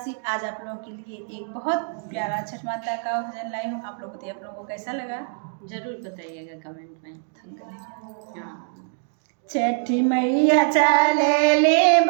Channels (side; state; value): left; silent; digital silence